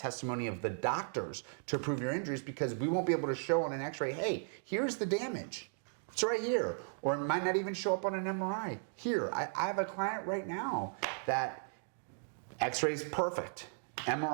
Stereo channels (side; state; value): left; silent; 54 dB below the other